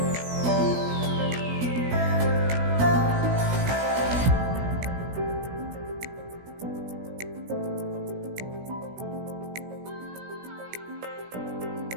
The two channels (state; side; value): late; left; 17 ms